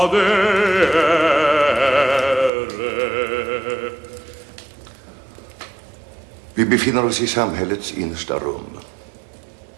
ära. Vi befinner oss i samhällets innersta rum.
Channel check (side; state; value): left; drops out; at 2.5 s